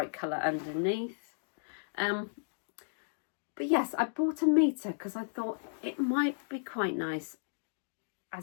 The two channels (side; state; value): right; silent; digital silence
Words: colour underneath. But yes, I bought a metre because I thought it might be quite nice